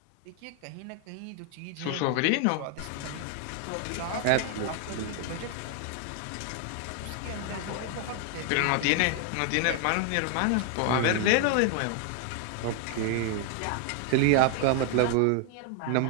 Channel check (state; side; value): different; both; correlation 0.00